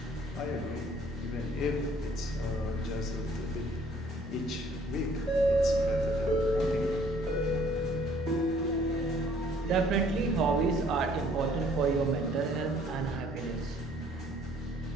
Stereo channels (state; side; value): normal; both; correlation 0.59